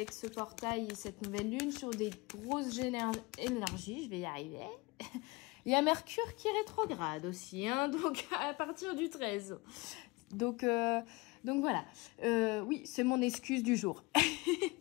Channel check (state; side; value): quieter; right; 24.7 dB